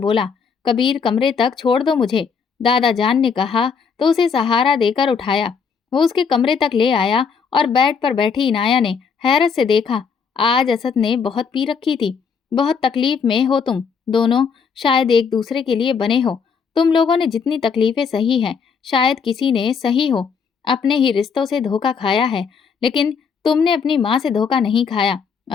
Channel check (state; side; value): quieter; right; 6.0 dB